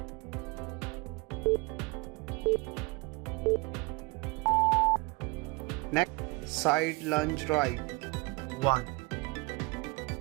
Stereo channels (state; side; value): quieter; left; 25.4 dB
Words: neck side lunge right, 1,